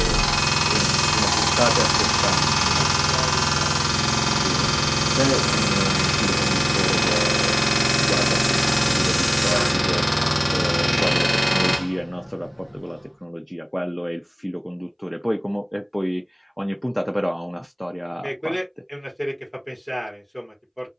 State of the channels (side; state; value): both; identical; correlation 1.00